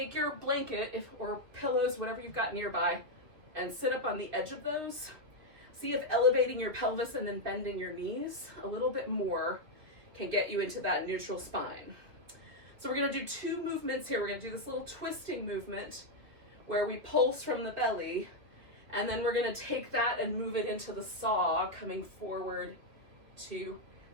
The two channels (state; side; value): late; left; 2.8 ms